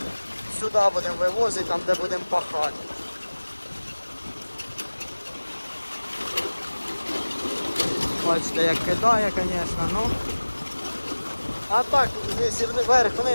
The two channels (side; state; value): both; inverted; correlation -1.00